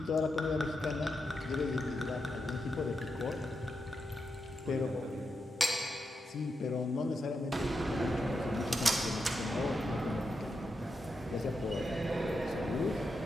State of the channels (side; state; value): both; normal; correlation 0.86